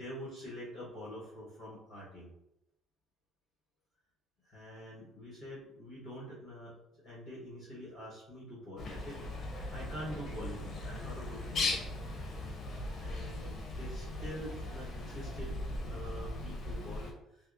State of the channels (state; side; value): normal; both; correlation 0.66